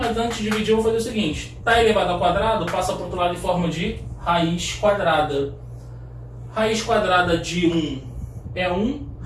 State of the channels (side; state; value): both; identical; correlation 1.00